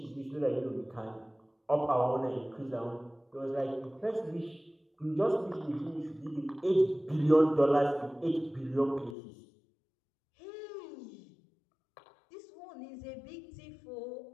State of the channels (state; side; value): drops out; right; at 9.2 s